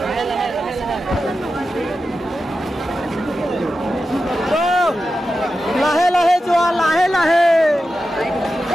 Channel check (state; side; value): normal; both; correlation 0.91